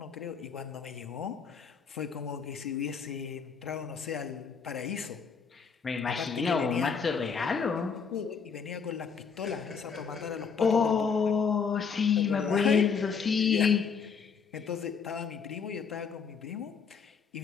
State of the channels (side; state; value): right; quieter; 6.0 dB